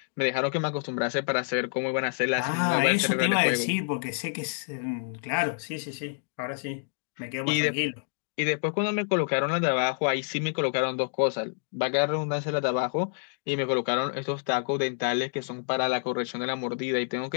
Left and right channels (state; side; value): silent; right; digital silence